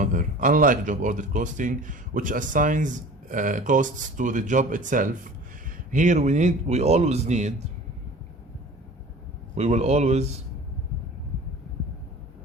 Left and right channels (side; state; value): both; normal; correlation 0.42